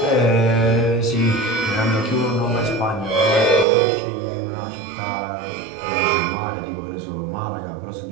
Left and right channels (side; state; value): left; drops out; at 3.7 s